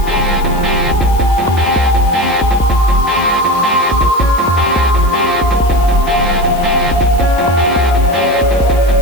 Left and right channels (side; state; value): left; noise; hiss, 18 dB below the sound